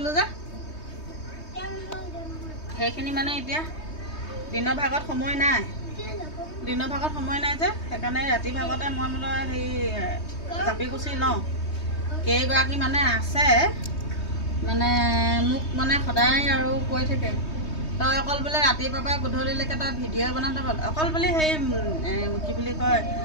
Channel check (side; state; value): right; late; 3.2 ms